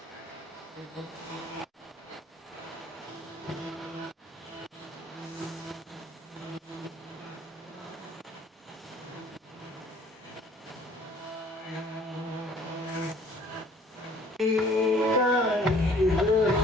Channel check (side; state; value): both; normal; correlation 0.55